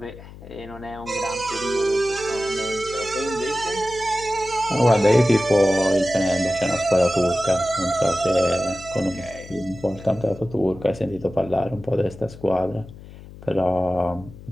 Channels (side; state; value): left; noise; hum, 17 dB below the sound